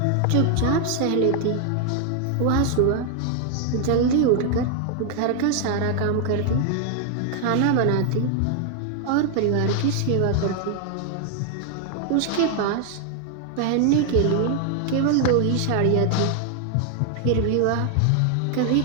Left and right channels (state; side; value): different; both; correlation 0.00